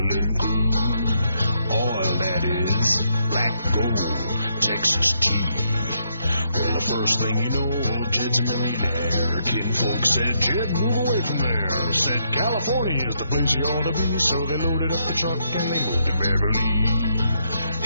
crude. Oil, that is, black gold, Texas tea. Well, the first thing you know, old Jed's a millionaire. Kinfolk said, Jed, move away from there. Said, California is the place you ought to be. So they loaded up the truck and they moved to Beverly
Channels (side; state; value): both; inverted; correlation -0.76